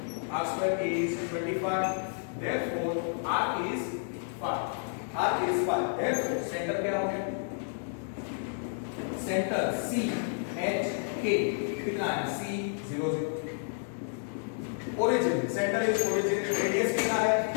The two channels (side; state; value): right; silent; 57 dB below the other